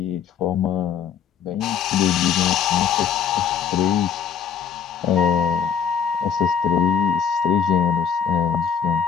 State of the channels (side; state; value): right; quieter; 7.6 dB